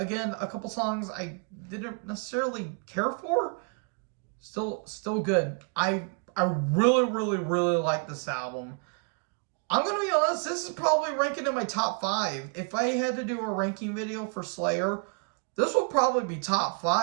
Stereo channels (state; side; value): quieter; left; 37.7 dB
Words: a couple songs I didn't necessarily care for. Still good. I really, really, really like this album. I'm going to be honest, this is probably ranking in my top 5. If I had to do a ranking video for Slayer, this will probably be top